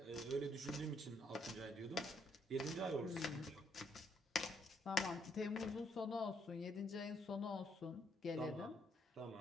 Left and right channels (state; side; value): normal; both; correlation 0.72